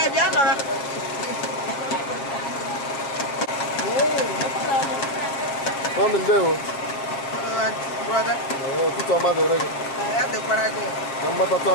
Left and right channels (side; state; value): right; late; 7.2 ms